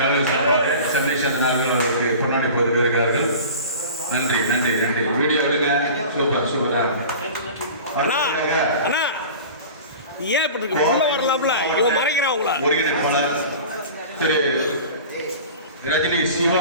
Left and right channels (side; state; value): both; inverted; correlation -0.38